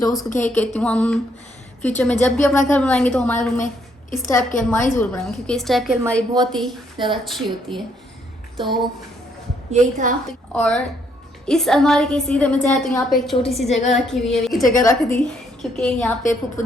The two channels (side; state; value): both; normal; correlation 0.71